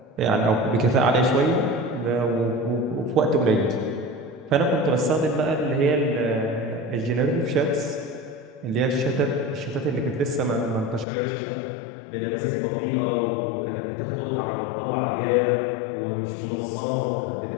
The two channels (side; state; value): right; drops out; at 11.1 s